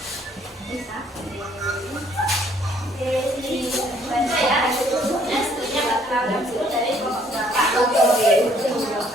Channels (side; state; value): both; normal; correlation 0.63